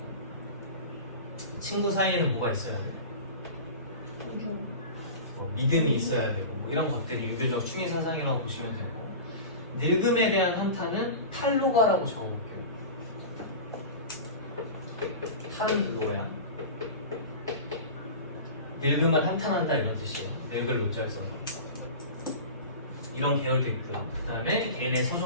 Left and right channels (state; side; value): inverted; both; correlation -0.32